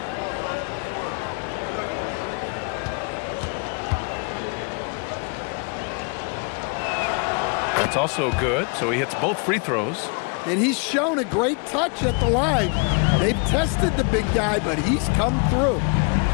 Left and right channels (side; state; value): right; quieter; 36.4 dB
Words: That's also good. So he hits both free throws. And he's shown a great touch at the line. They've tested the big guy, but he's come through.